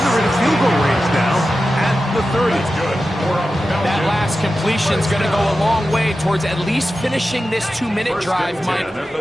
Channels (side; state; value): both; normal; correlation 0.93